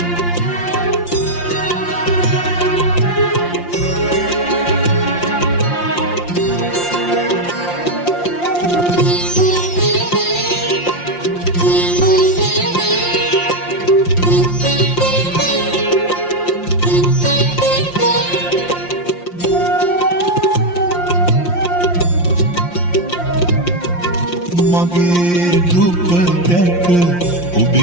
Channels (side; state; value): right; late; 5.7 ms